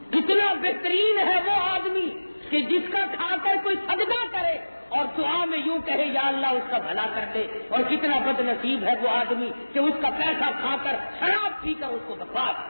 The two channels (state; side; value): inverted; both; correlation -1.00